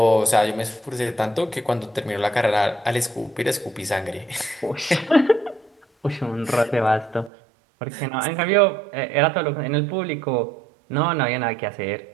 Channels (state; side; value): drops out; left; at 7.3 s